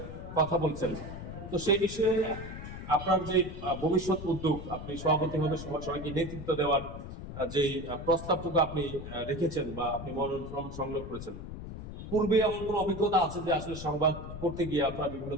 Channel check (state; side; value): noise; left; rumble, 10 dB below the sound